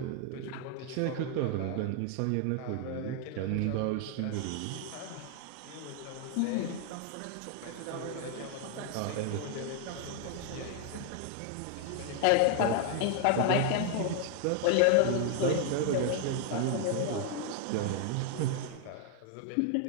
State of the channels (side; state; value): both; different; correlation 0.00